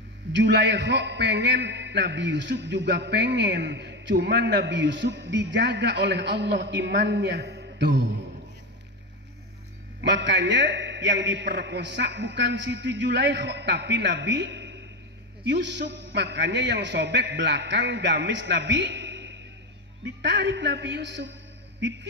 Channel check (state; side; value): normal; both; correlation 0.16